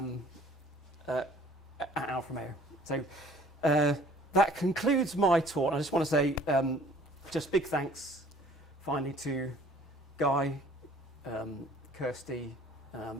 at Alfa Romeo. So that concludes my talk. I just want to say just big thanks finally to Guy, Kirsty,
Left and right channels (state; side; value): normal; both; correlation 0.54